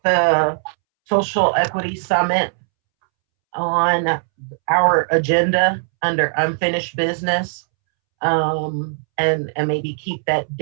the social equity summit on our agenda under unfinished business, and maybe keep that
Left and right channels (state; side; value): silent; left; 66 dB below the other